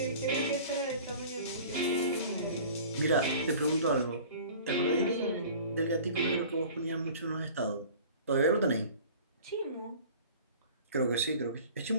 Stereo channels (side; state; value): both; inverted; correlation -0.44